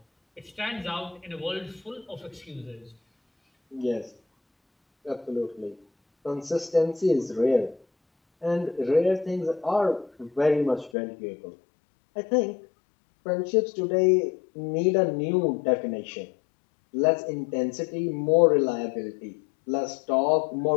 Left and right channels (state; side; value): drops out; right; at 10.9 s